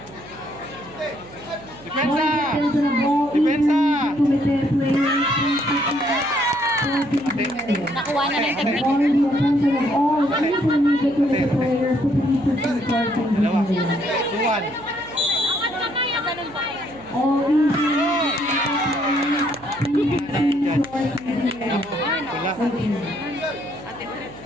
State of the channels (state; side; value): noise; right; hum, 22 dB below the sound